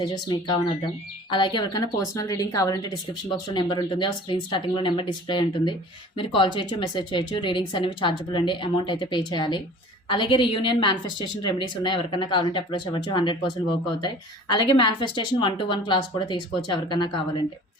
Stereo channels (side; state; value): both; normal; correlation 0.45